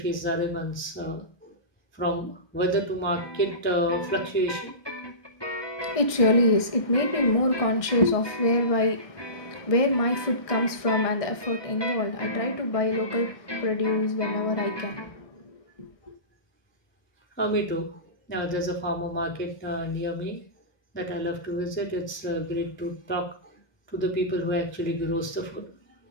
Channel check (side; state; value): right; late; 1.6 ms